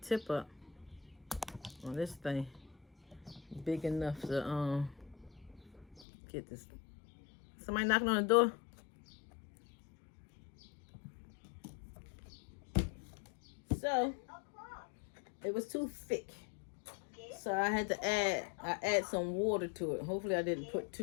tip up on this thing big enough to get this. Somebody knocking on the door? So, it was too thick. So I had to add some water to it. Hopefully I didn't put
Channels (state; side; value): drops out; right; at 6.1 s